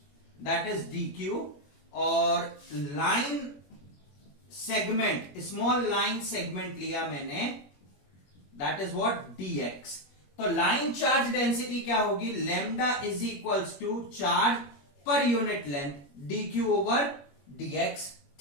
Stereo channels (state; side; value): late; right; 21 ms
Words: that is dq, और line segment, small line segment लिया मैंने, दैट इज व्हाट, dx। तो लाइन चार्ज डेंसिटी क्या होगी, lambda is equals to charge पर unit length dq over dx,